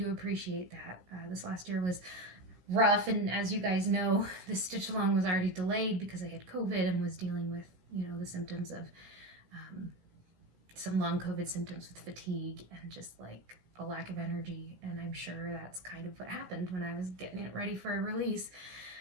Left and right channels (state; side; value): late; left; 16 ms